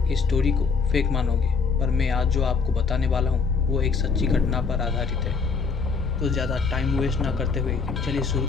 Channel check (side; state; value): right; quieter; 5.1 dB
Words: इस स्टोरी को फेक मानोगे, पर मैं आज जो आपको बताने वाला हूँ वो एक सच्ची घटना पर आधारित है। तो ज़्यादा टाइम वेस्ट ना करते हुए चलिए शुरू